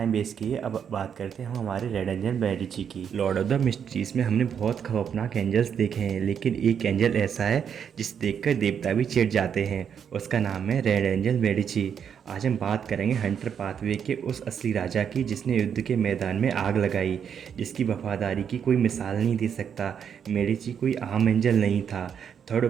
वेस्ट किए अब बात करते हैं हम हमारे रेड एंजल मेडिची की। लॉर्ड ऑफ द मिस्ट्रीज में हमने बहुत खौफनाक एंजल्स देखे हैं, लेकिन एक एंजल ऐसा है जिसे देखकर देवता भी चिढ़ जाते हैं। उसका नाम है रेड एंजल मेडिची। आज हम बात करेंगे हंटर पाथवे के उस असली राजा की जिसने युद्ध के मैदान में आग लगाई, जिसकी वफादारी की कोई मिसाल नहीं दे सकता। मेडिची कोई आम एंजल नहीं था। थर्ड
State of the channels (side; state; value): left; quieter; 7.8 dB